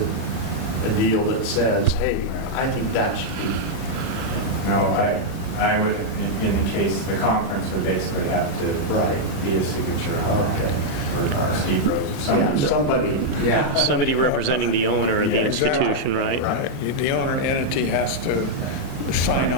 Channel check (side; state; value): right; late; 36 ms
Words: deal that says, hey, I think that should be. No, I would, in the case, the conference would basically have to Right. be a signature on Okay. that, or Steve Rose, or Yeah, somebody. somebody, yeah. Somebody representing the owner of the Yeah, institution, right? Right. The owner entity has to sign